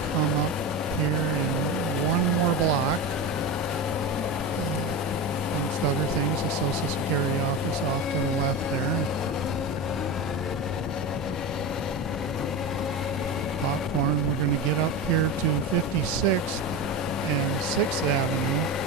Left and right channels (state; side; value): normal; both; correlation 0.23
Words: come up here in one more block. Amongst other things, the Social Security office off to the left there. Popcorn. We're going to get up here to 56th and 6th Avenue,